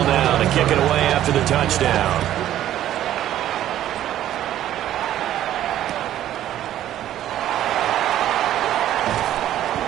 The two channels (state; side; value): quieter; left; 12.3 dB